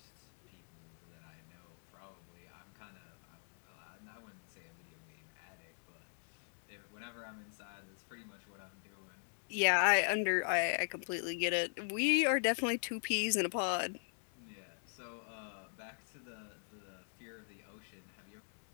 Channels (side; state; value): right; silent; digital silence